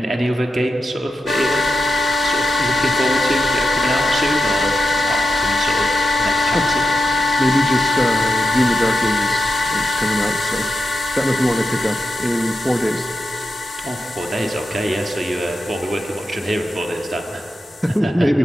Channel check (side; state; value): both; normal; correlation 0.88